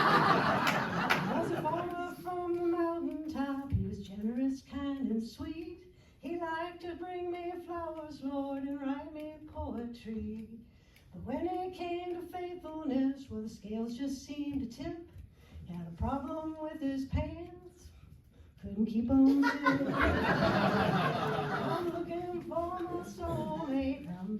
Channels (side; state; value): both; identical; correlation 1.00